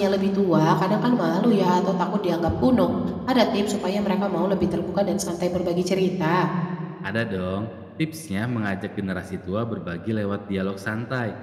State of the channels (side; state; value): both; identical; correlation 1.00